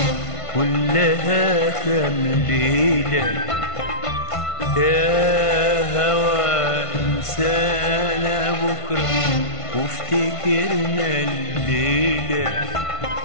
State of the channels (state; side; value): late; right; 1.5 ms